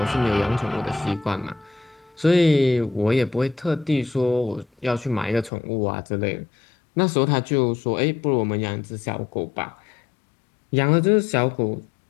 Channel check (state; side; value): drops out; right; at 5.5 s